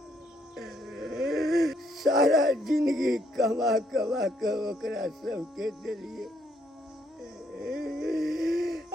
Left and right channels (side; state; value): both; normal; correlation 0.71